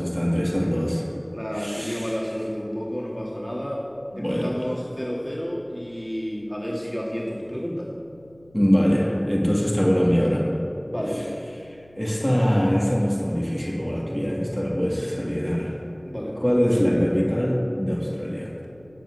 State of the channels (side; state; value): left; noise; hum, 29 dB below the sound